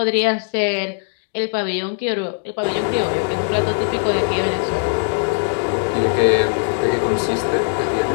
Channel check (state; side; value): silent; right; digital silence